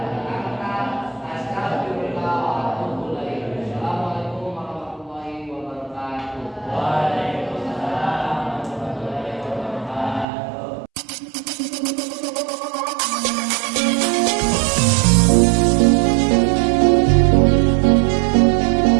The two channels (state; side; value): drops out; left; at 10.2 s